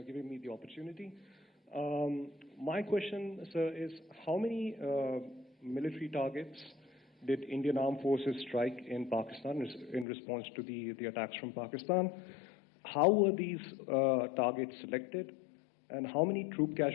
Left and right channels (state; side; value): drops out; right; at 10.1 s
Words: giving me the opportunity. My question, sir, is how many military targets did Indian Armed Forces strike in Pakistan in response to the attacks from Pakistan? How were these targets selected? And how many troop